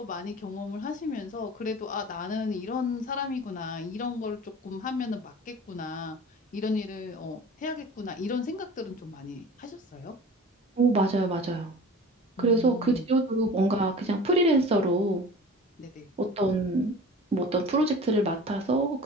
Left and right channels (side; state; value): both; normal; correlation 0.40